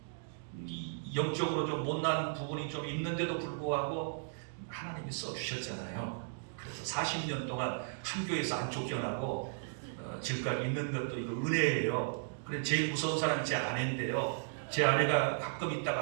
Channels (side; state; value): left; silent; digital silence